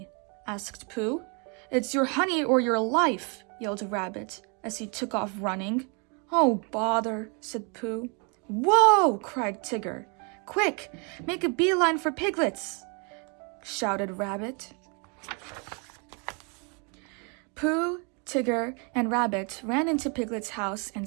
asked Pooh. "It's your honey or your life," yelled Rabbit as he took off running. "Oh, bother," said Pooh. "Whoa!" cried Tigger. "Quick, make a beeline for Piglet's," shouted Rabbit. Pooh, Tigger, and Rabbit ran into Piglet's house and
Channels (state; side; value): quieter; left; 34.9 dB